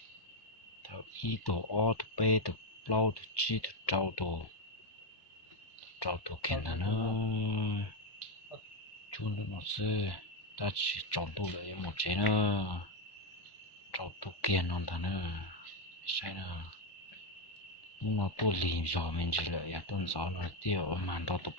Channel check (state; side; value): late; right; 1.1 ms